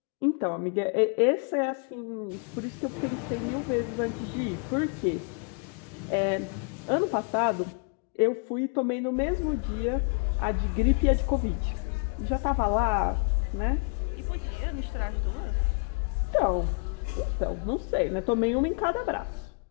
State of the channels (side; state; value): right; quieter; 36.5 dB